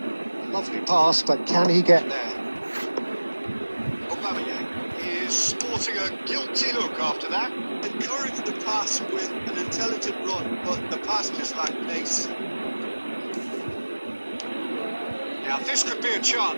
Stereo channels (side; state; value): both; inverted; correlation -1.00